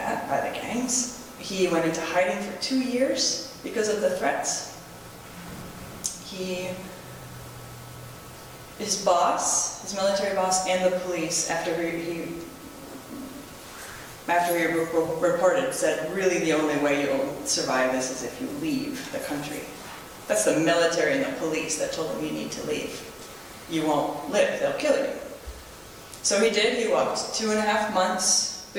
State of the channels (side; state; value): both; identical; correlation 1.00